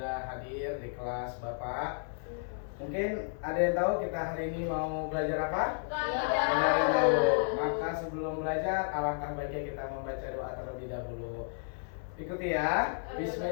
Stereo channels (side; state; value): right; silent; 56 dB below the other